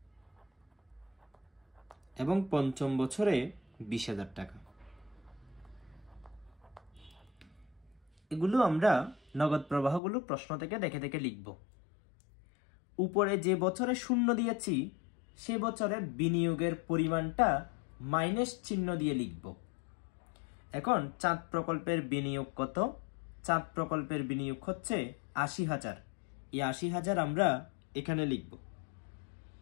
এবং পঞ্চম বছরে 20,000 টাকা। এগুলো আমরা নগদ প্রবাহগুলো প্রশ্ন থেকে দেখে দেখে লিখব। উপরে যে বছরে 0 দিয়েছি সে বছরে বিনিয়োগের পরিমাণটা মাইনাস চিহ্ন দিয়ে লিখব। এখন চাঁদ প্রকল্পের বিনিয়োগ কত? চাঁদ প্রকল্পের বিনিয়োগ হচ্ছে 80,000। এই 80,000 আমরা এখানে লিখব,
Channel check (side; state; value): right; drops out; at 10.0 s